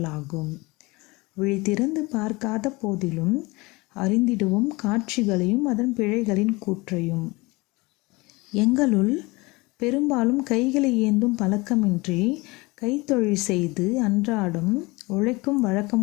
விழித்திறந்து பார்க்காத போதிலும் அறிந்திடுவோம் காட்சிகளையும் அதன் பிழைகளின் கூற்றையும். எங்களுள் பெரும்பாலும் கைகளை ஏந்தும் பழக்கமின்றி கைத்தொழில் செய்து அன்றாடம் உழைக்கும் வழக்கம்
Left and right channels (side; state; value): right; quieter; 23.9 dB